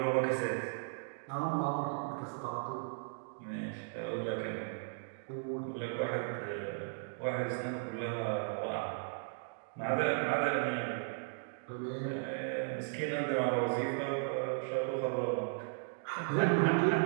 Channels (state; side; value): silent; left; digital silence